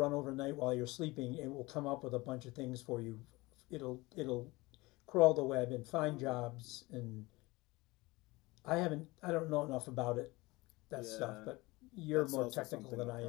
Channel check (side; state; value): right; quieter; 21.9 dB